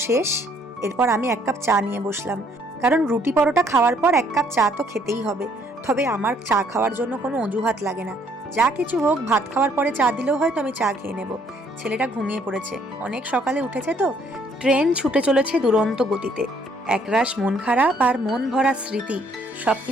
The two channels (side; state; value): both; normal; correlation 0.65